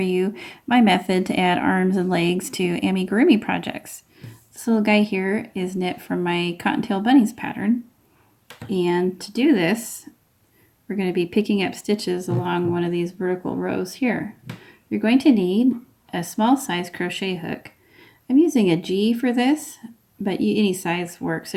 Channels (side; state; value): both; identical; correlation 1.00